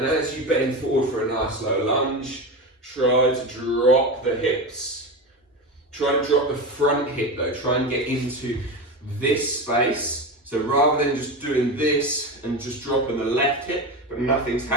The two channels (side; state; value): both; normal; correlation 0.21